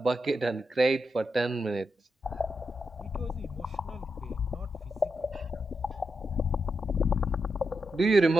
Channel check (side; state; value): both; normal; correlation 0.86